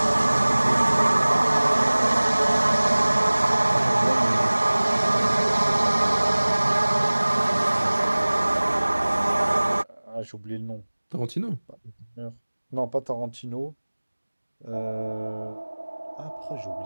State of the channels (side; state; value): both; inverted; correlation -1.00